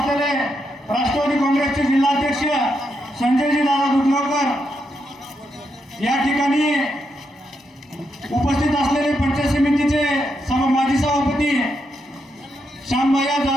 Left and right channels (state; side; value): normal; both; correlation 0.82